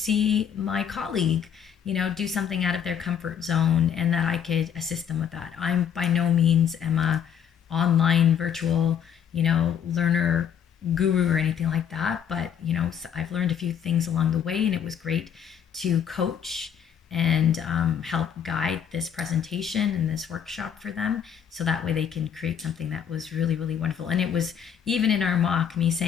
my colleague, do something out of their comfort zone and that I could assist them with that. I'm by no means am a online virtual, learner guru or anything like that. But, I've learned a few things along the way, and it was great to coach and help guide this presentation and this workshop for them, so that way they can create something that was really, really wonderful. And it was even in our mock me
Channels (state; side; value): quieter; right; 8.3 dB